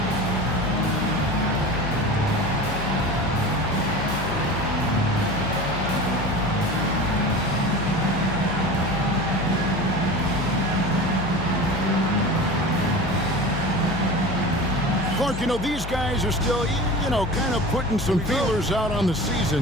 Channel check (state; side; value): noise; left; hum, 8 dB below the sound